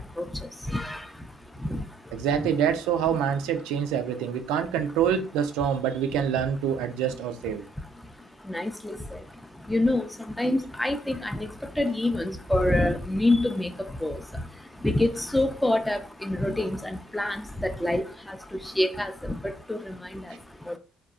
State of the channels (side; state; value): both; normal; correlation 0.74